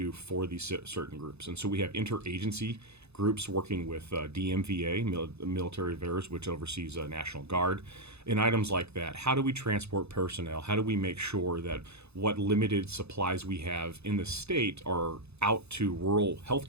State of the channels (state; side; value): late; left; 0.80 ms